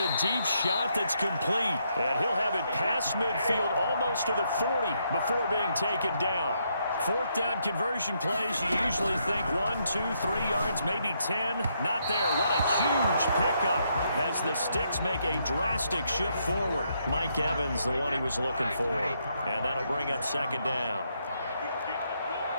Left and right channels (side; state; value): both; inverted; correlation -0.76